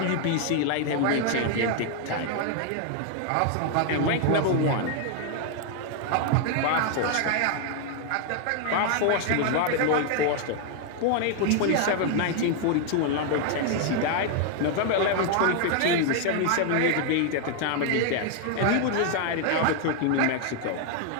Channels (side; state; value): both; different; correlation 0.00